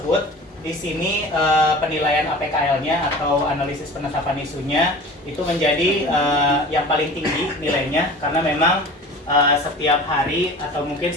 di sini penilaian APKL-nya atau analisis penetapan isunya itu menjadi yang paling tinggi nilainya, karena memang setiap hari atau mungkin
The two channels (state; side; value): normal; both; correlation 0.39